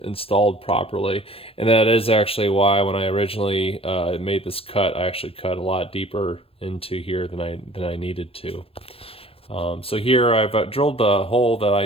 installed properly. And that is actually why when I originally made this cut, I actually cut a lot deeper into here than I needed to. So here I've drilled the hole that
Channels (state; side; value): late; right; 0.27 ms